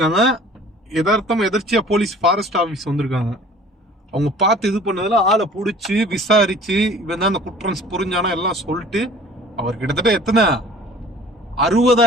எதர்ச்சியா போலீஸ் ஃபாரஸ்ட் ஆஃபீஸ் வந்திருக்காங்க. அவங்க பார்த்து இது பண்ணதுல ஆளை பிடிச்சி விசாரிச்சு, இவன் தான் அந்த குற்றம் புரிஞ்சானா எல்லாம் சொல்லிட்டு, அவர் கிட்டத்தட்ட எத்தனை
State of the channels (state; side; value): normal; both; correlation 0.48